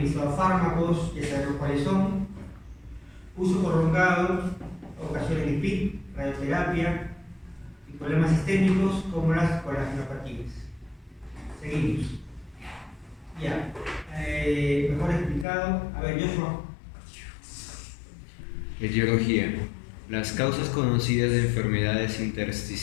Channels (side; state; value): right; drops out; at 15.5 s